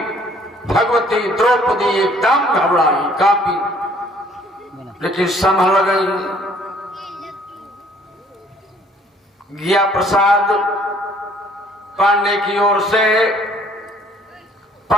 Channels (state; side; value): normal; both; correlation 0.59